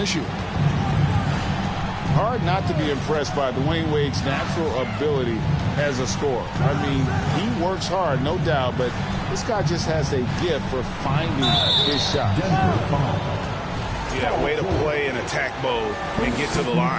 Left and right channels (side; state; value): both; identical; correlation 1.00